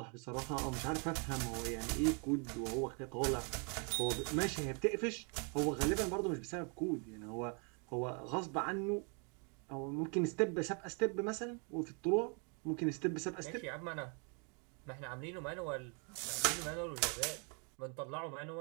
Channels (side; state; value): left; quieter; 36.9 dB